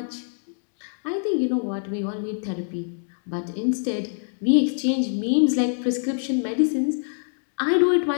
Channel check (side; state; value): right; silent; digital silence